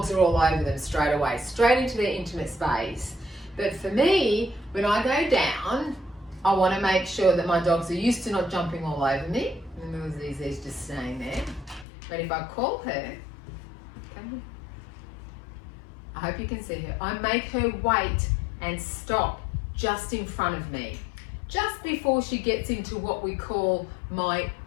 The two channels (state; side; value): drops out; right; at 11.9 s